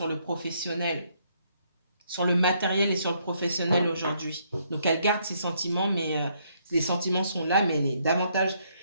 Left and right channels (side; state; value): both; inverted; correlation -0.71